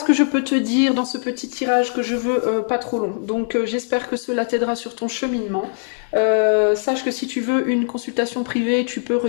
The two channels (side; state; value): right; silent; digital silence